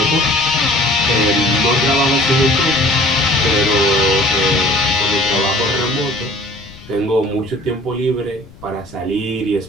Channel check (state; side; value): noise; left; rumble, 21 dB below the sound